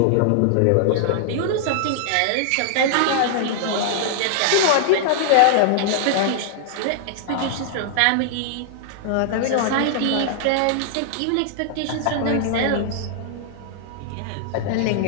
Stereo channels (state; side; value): different; both; correlation -0.01